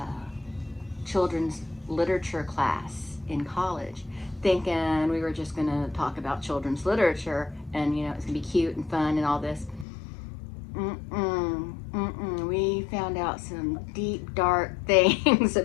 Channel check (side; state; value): right; drops out; at 9.9 s